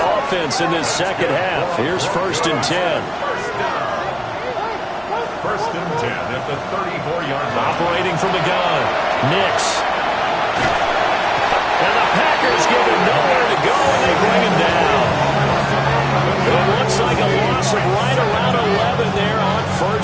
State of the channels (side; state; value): both; identical; correlation 1.00